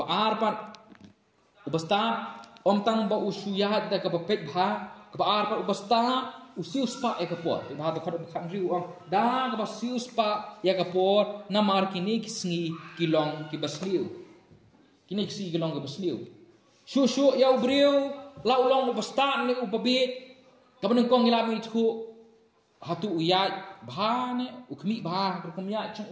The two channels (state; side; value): identical; both; correlation 1.00